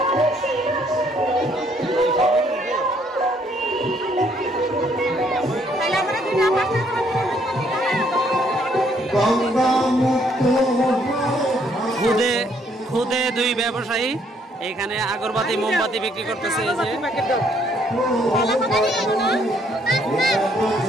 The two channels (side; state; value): both; normal; correlation 0.67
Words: খুদে দুই ব্যবসায়ী এখানে আগরবাতি মোমবাতি বিক্রি করতেছে। এই যে